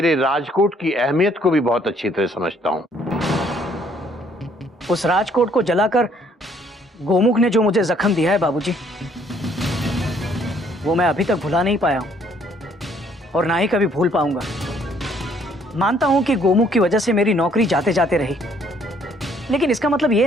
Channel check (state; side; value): normal; both; correlation 0.64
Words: राजकोट की अहमियत को भी बहुत अच्छी तरह समझता हूँ। उस राजकोट को जलाकर गोमुख ने जो मुझे जख्म दिया है बाबूजी, वो मैं अभी तक भुला नहीं पाया हूं और ना ही कभी भूल पाऊंगा। मानता हूं कि गोमुख की वजह से मेरी नौकरी जाते जाते रही, लेकिन इसका मतलब ये